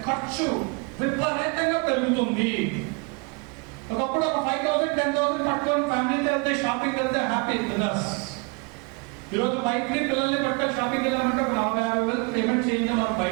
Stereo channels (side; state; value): left; quieter; 31.2 dB